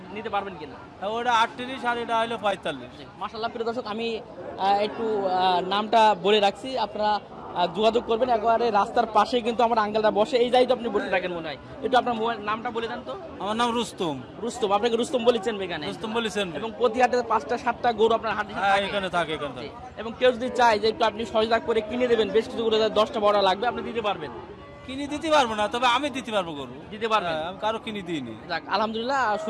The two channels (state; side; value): identical; both; correlation 1.00